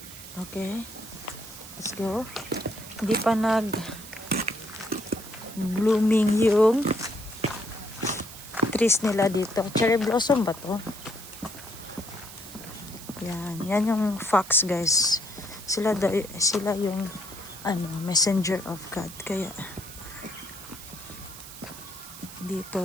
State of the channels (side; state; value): right; noise; hiss, 14 dB below the sound